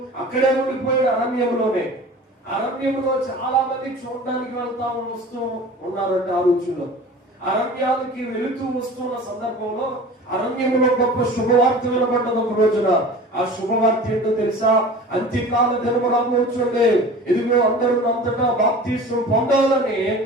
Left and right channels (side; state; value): both; normal; correlation 0.40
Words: అక్కడే ఉండిపోయాడు అరణ్యంలో చాలా మంది చూడడానికి వస్తూ ఉన్నారంట ఆ రోజుల్లో. అరణ్యాలకి వెళుతూ వస్తున్న సందర్భంలో అరణ్యంలో గొప్ప శుభవార్త వినబడ్డది ఒక రోజున. ఆ శుభవార్త ఏంటో తెలుసా? అంత్యకాల దినము రాబోచుండే, ఇదిగో అందరూ అంతటా బాప్తిస్మం పొందాలని